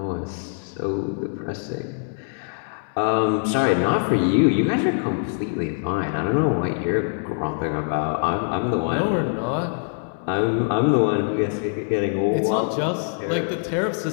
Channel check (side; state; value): right; silent; 63 dB below the other